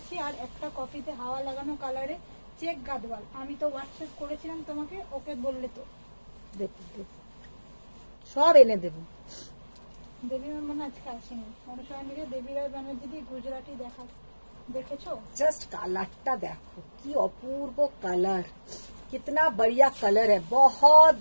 আর একটা কফিতে হাওয়া লাগানো কালারে চেক গাদওয়াল। আমি তো হোয়াটসঅ্যাপ করেছিলাম তোমাকে, ওকে বললে তো সব এনে দেব। দেবী ম্যাম মানে আজকে আসেনি। অনুষ্ঠান থেকে দেবী রায় ব্যানার্জি দিয়ে গুজরাটি দেখেছো? जस्ट कलरটা দেখো, কি অপূর্ব कलर, कितना बढ़िया कलर है, बहुत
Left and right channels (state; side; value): inverted; both; correlation -1.00